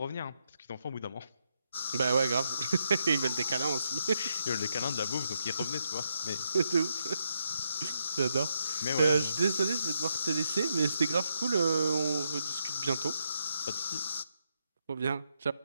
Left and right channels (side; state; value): both; inverted; correlation -0.81